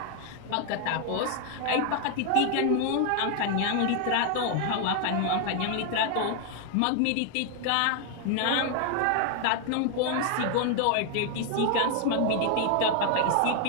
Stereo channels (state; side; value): different; both; correlation 0.00